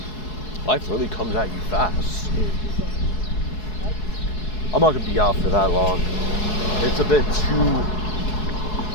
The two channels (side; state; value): right; late; 4.7 ms